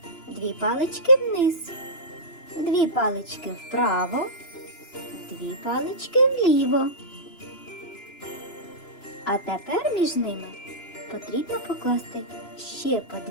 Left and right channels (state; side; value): late; right; 2.9 ms